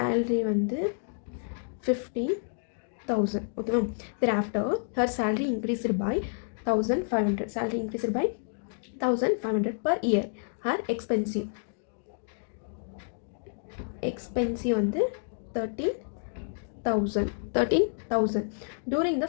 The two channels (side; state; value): right; silent; digital silence